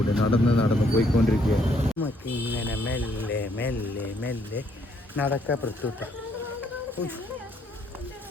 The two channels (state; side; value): normal; both; correlation 0.69